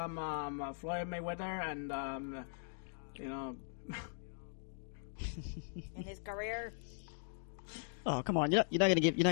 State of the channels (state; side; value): silent; right; digital silence